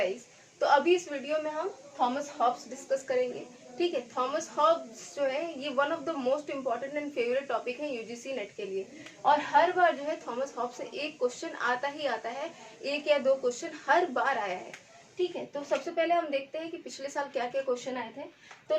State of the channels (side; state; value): both; identical; correlation 1.00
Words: तो अभी इस वीडियो में हम थॉमस हॉब्स डिस्कस करेंगे। ठीक है, थॉमस हॉब्स जो है ये one of the most important and favourite topic है यूजीसी नेट के लिए। और हर बार जो है थॉमस हॉब्स से एक क्वेश्चन आता ही आता है, एक या दो क्वेश्चन हर बार आया है। ठीक है, तो सबसे पहले हम देखते हैं कि पिछले साल क्या क्या क्वेश्चन आए थे। तो